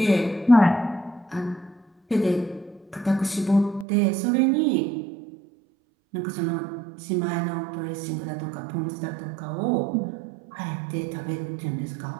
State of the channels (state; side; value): drops out; left; at 3.9 s